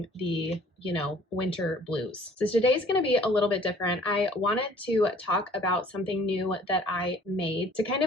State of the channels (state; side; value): normal; both; correlation 0.54